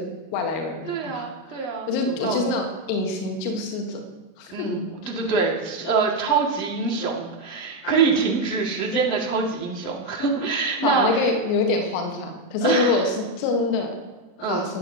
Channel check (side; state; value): right; late; 37 ms